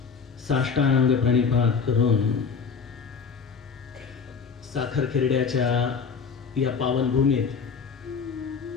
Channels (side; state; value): right; quieter; 5.7 dB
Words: साष्टांग प्रणिपात करून साखर खेरड्याच्या या पावनभूमीत